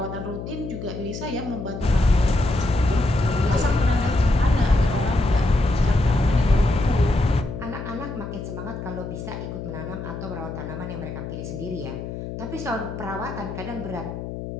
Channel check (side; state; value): left; noise; hum, 8 dB below the sound